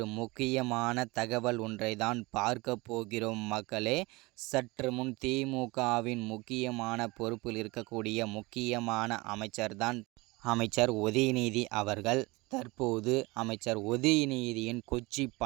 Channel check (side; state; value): left; quieter; 23.5 dB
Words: முக்கியமான தகவல் ஒன்றை தான் பார்க்க போகிறோம் மக்களே. சற்று முன் திமுகவின் முக்கியமான பொறுப்பில் இருக்கக்கூடிய முக்கியமான அமைச்சர் உதயநிதி அவர்கள் தற்போது அமைச்சர் உதயநிதியின் கொச்சி